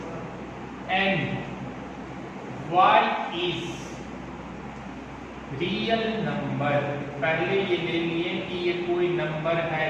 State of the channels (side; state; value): both; identical; correlation 1.00